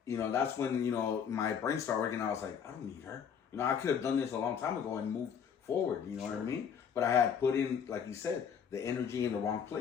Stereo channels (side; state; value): right; quieter; 7.5 dB